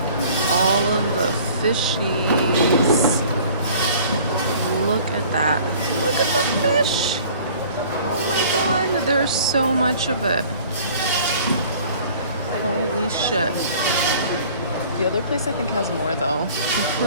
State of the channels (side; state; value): both; inverted; correlation -0.50